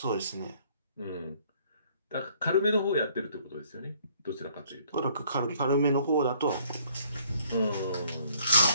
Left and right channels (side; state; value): both; inverted; correlation -0.62